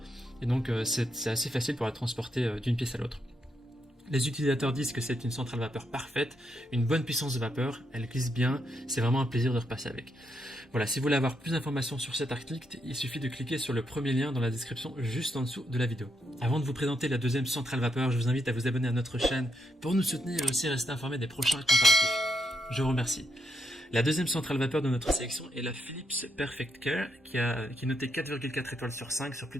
et donc c'est assez facile pour la transporter d'une pièce à l'autre. Les utilisateurs disent que c'est une centrale vapeur parfaite, une bonne puissance de vapeur, elle glisse bien, c'est vraiment un plaisir de repasser avec. Voilà, si vous voulez avoir plus d'informations sur cet article, il suffit de cliquer sur le premier lien dans la description juste en dessous de la vidéo. Avant de vous présenter la deuxième centrale vapeur, je vous invite à vous abonner à notre chaîne pour nous soutenir et aussi rester informé des prochains comparatifs. Je vous remercie. La deuxième centrale vapeur de notre sélection est la Philips Perfect Care qui est notée 4,4 étoiles sur 5 sur plus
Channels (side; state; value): both; normal; correlation 0.80